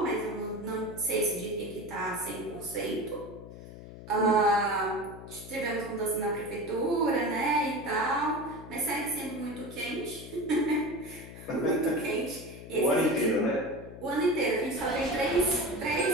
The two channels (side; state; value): left; noise; hum, 14 dB below the sound